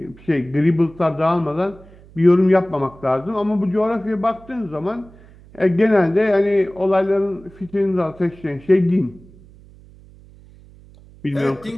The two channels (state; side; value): noise; right; hum, 23 dB below the sound